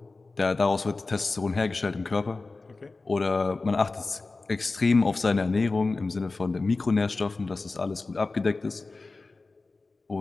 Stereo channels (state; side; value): quieter; right; 3.6 dB